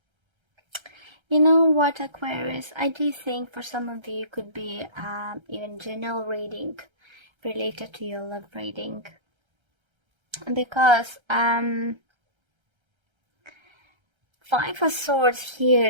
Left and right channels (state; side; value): late; left; 1.3 ms